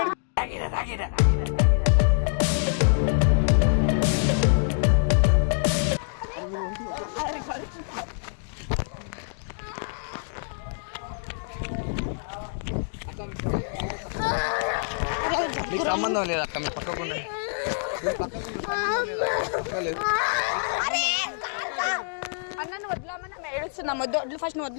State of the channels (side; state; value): right; silent; digital silence